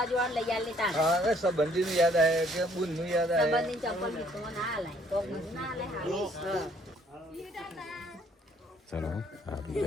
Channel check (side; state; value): both; normal; correlation 0.63